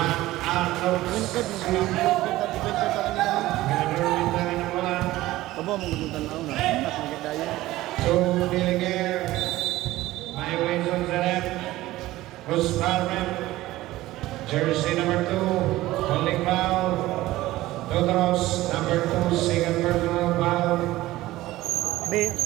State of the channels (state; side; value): quieter; left; 16.8 dB